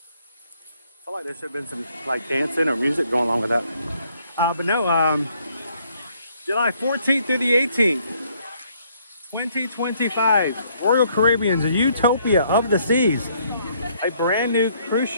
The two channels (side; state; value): both; inverted; correlation -0.67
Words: feel like there should have been some like dancing or music going on with that. But no, July 14th through the 18th, 2025, Royal Caribbean's Utopia of the Seas, a brand new cruise